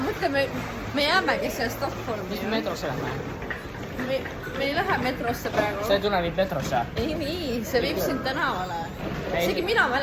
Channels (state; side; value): identical; both; correlation 1.00